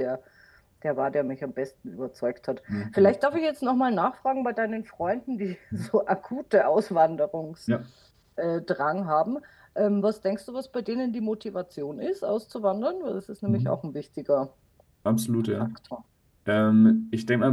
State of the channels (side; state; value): both; identical; correlation 1.00